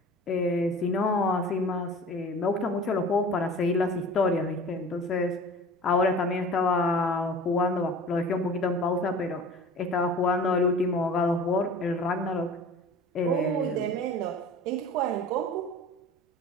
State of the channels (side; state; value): both; normal; correlation 0.41